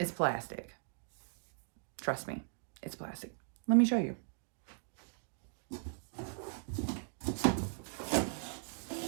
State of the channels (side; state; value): left; silent; digital silence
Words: plastic. Trust me, it's plastic. Let me show you.